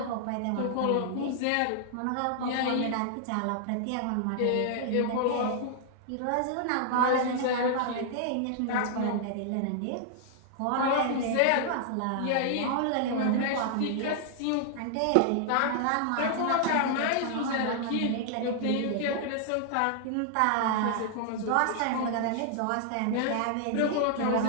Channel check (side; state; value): both; different; correlation -0.01